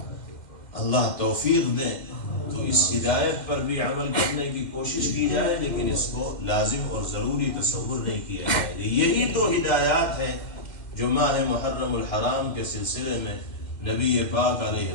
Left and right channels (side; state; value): right; late; 2.2 ms